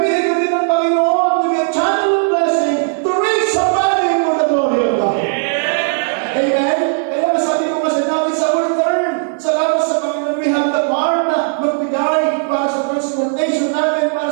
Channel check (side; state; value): left; silent; 68 dB below the other